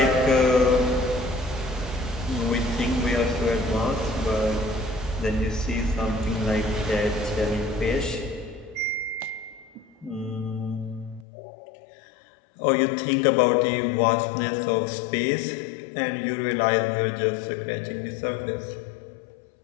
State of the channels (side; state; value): right; drops out; at 11.2 s